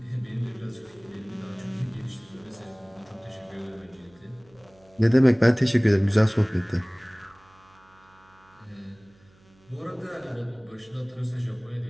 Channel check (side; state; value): right; noise; hum, 30 dB below the sound